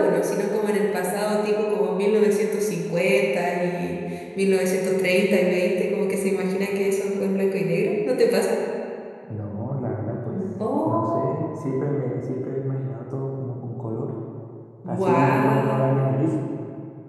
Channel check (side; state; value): both; identical; correlation 1.00